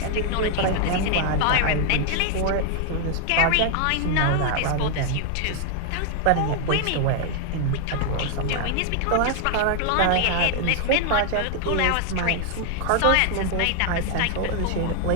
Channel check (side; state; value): both; different; correlation 0.00